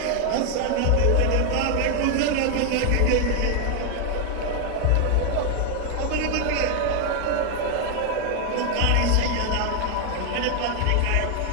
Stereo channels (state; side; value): different; both; correlation 0.00